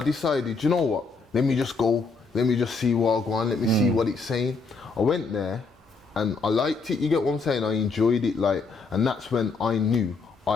decided, you know what, let me just go, let me just see what I go on, let me see what it's saying. I went there and I liked it, you get what I'm saying, I enjoyed it, like, and that's when I knew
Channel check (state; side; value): quieter; right; 4.2 dB